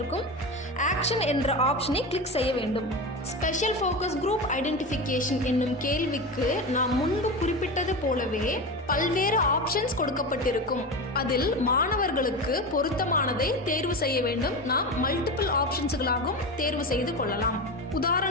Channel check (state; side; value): normal; both; correlation 0.23